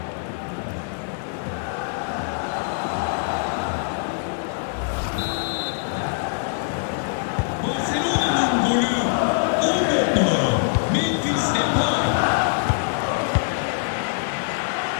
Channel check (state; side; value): silent; right; digital silence